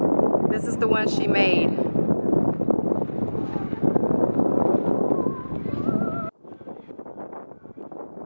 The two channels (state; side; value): inverted; both; correlation -1.00